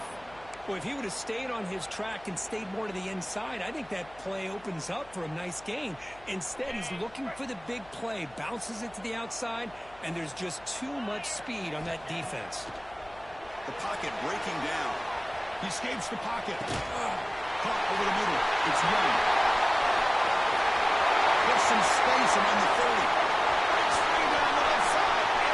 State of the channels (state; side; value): noise; left; hum, 25 dB below the sound